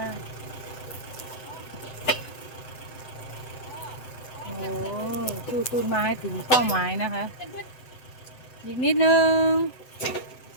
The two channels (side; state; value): right; late; 8.0 ms